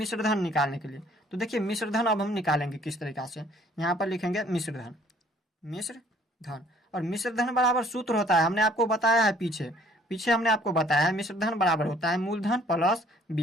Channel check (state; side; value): normal; both; correlation 0.58